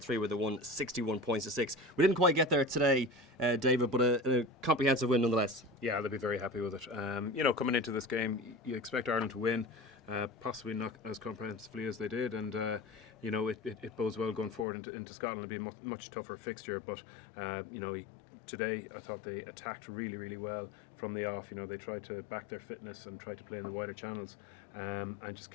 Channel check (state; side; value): drops out; right; at 14.7 s